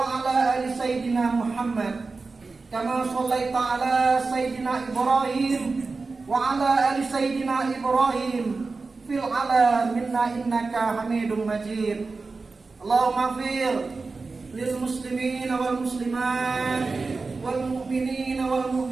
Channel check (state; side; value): quieter; left; 4.0 dB